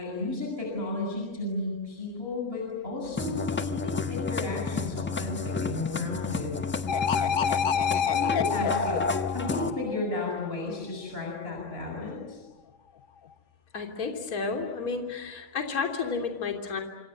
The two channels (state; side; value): quieter; right; 4.3 dB